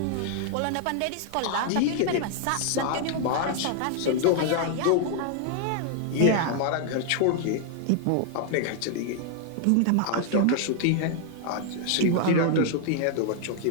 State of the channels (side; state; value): both; different; correlation 0.00